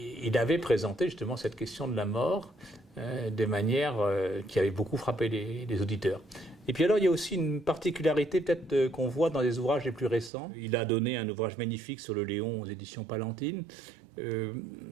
il avait présenté justement cette question de la mort de manière qui avait beaucoup frappé les auditeurs. Et puis alors il y a aussi une particularité peut-être qu'on voit dans les ouvrages les plus récents. Il a donné un ouvrage magnifique sur le Léon aux éditions Palantine.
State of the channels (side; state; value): left; drops out; at 10.3 s